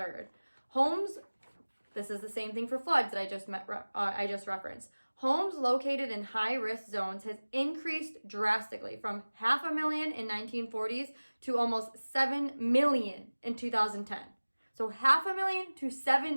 Homes, this is the same thing for floods that I just referenced. Homes located in high-risk zones has increased drastically from 500,000 in 1940s to almost 7 million in 2010. So 500,000 to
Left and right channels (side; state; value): both; inverted; correlation -1.00